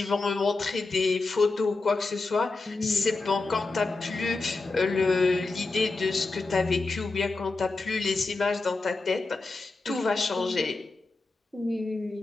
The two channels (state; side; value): quieter; right; 3.5 dB